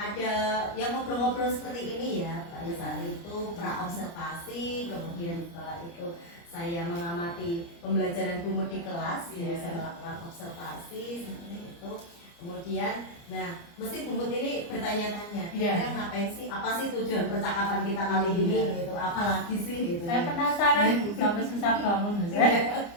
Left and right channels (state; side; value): late; right; 29 ms